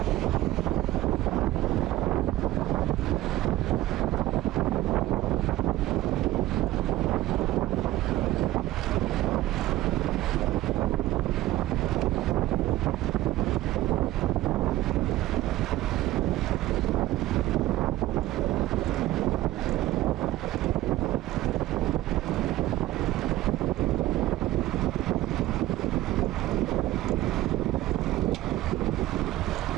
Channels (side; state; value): left; quieter; 15.7 dB